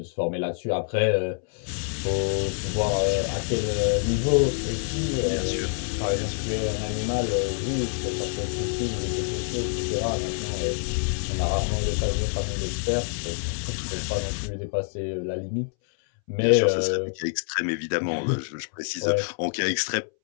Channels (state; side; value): silent; right; 61 dB below the other